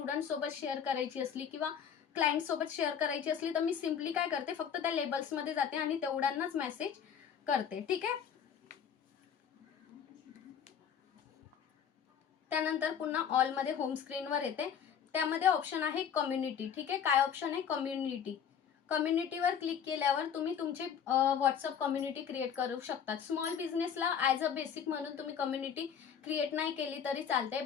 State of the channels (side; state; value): right; quieter; 7.9 dB